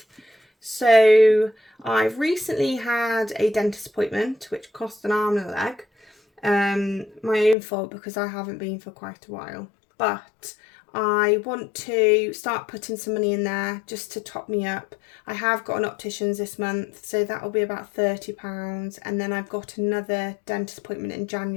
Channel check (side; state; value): right; drops out; at 7.6 s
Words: So I've recently had a dentist appointment, which cost an arm and a leg. My own fault because I haven't been for quite a while. But I want to start putting some money in there just to top me up. I have got an optician's this month, so that will be about £30. And then I've got another dentist appointment in